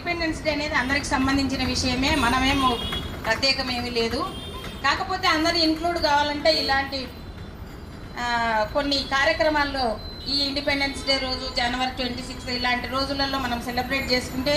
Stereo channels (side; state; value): both; identical; correlation 1.00